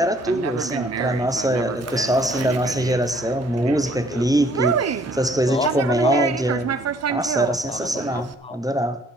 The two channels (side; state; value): both; normal; correlation 0.61